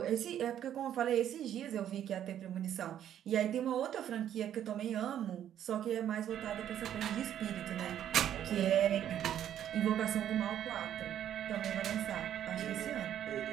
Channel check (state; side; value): quieter; left; 10.5 dB